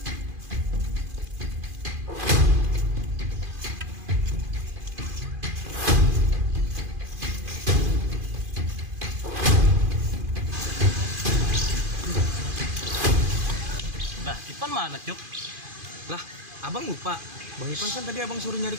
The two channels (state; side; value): late; left; 2.5 ms